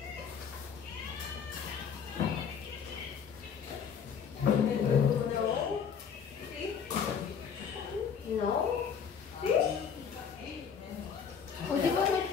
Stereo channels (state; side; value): quieter; right; 6.9 dB